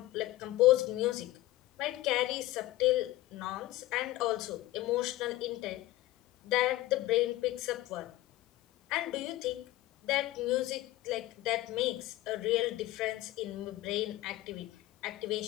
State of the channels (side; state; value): right; quieter; 16.8 dB